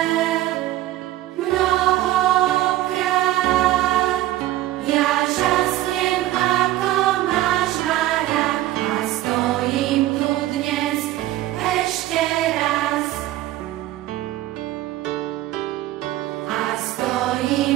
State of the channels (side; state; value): left; quieter; 15.0 dB